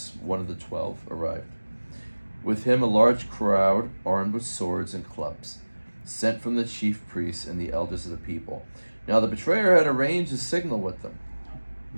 one of the 12, arrived. With him a large crowd armed with swords and clubs, sent from the chief priests and the elders of the people. Now the betrayer had arranged a signal with them.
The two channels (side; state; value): both; inverted; correlation -1.00